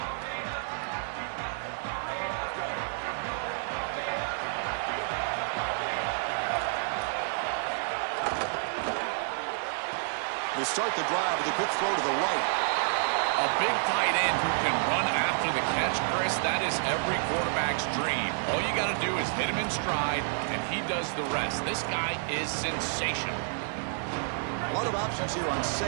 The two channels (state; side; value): silent; left; 57 dB below the other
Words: They start the drive with a quick throw to the right. A big tight end who can run after the catch, Chris, that is every quarterback's dream. All you got to do is hit him in stride, and he does the rest. This guy is sensational. A lot of options here on